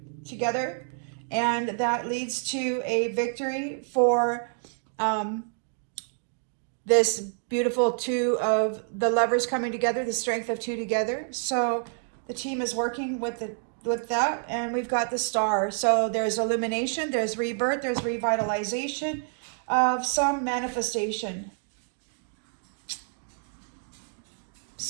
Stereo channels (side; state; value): left; silent; 59 dB below the other